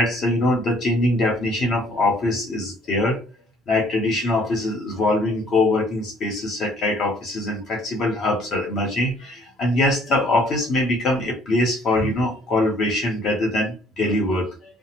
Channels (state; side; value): normal; both; correlation 0.60